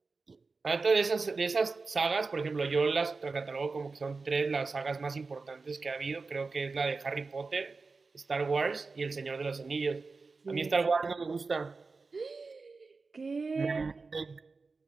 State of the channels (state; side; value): quieter; left; 4.1 dB